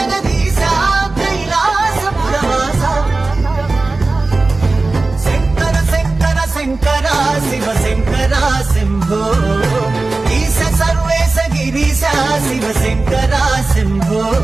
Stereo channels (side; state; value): left; quieter; 3.4 dB